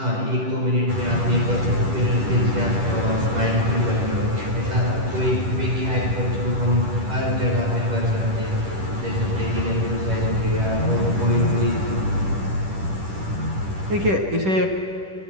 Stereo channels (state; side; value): late; left; 10 ms